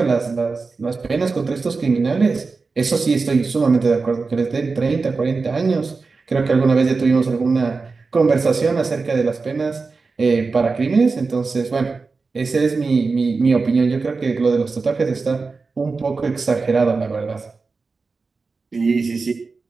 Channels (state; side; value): quieter; left; 4.3 dB